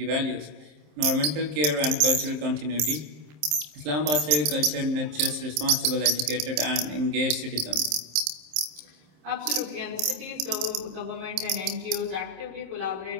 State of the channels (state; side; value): late; left; 27 ms